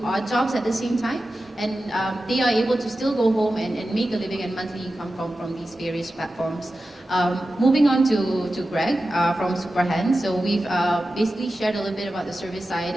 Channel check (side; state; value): both; normal; correlation 0.93